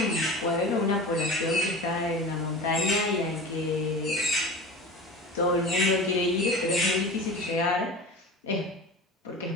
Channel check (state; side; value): normal; both; correlation 0.33